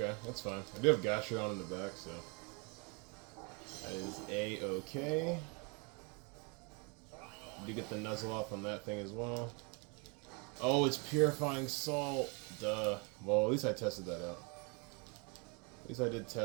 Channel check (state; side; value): quieter; left; 32.8 dB